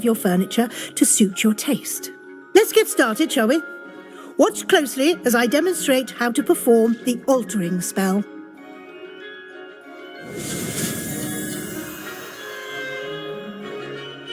your furniture to suit your taste. Let's get started, shall we? Watch closely as I demonstrate how to perform the altering spell.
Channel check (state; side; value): identical; both; correlation 1.00